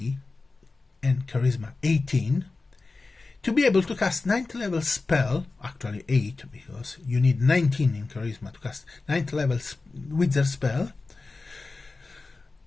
and charisma 18, to be able to cast 9th level spell, actually 8, because you need 19 in charisma to cast 9th level wizard spell.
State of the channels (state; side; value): quieter; right; 3.7 dB